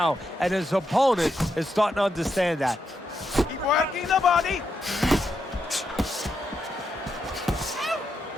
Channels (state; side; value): normal; both; correlation 0.83